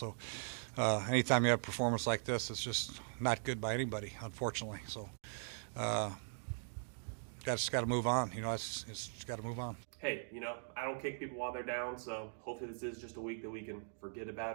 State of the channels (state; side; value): silent; left; digital silence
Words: anytime you have a performance like this, it's just not good by anybody, unfortunately. So just got to move on. You know, it's just got to move on. Hey, you know, I don't kick people while they're down, so hopefully this is just a week that we can forget